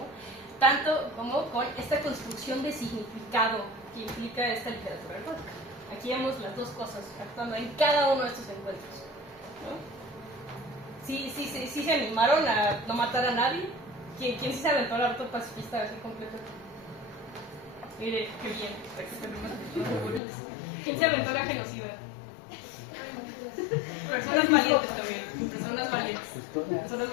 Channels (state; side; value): drops out; right; at 20.2 s